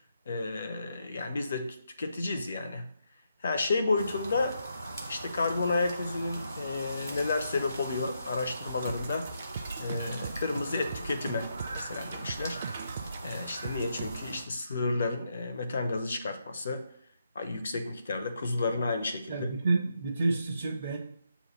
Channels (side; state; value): both; inverted; correlation -0.80